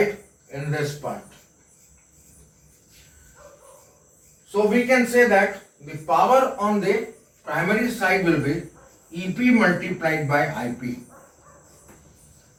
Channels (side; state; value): both; identical; correlation 1.00